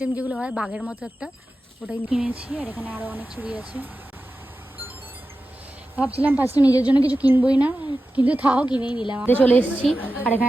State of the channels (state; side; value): normal; both; correlation 0.93